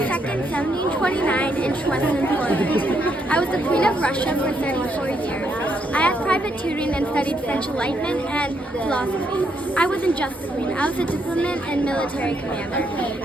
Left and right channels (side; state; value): both; normal; correlation 0.76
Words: 1729 in Schwetzen, Poland. I was the Queen of Russia for 34 years. I had private tutoring and studied French Enlightenment and philosophy. I wasn't just the Queen, I was a diplomat and military commander.